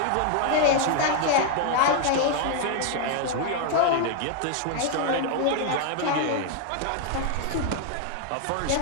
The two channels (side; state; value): both; different; correlation 0.00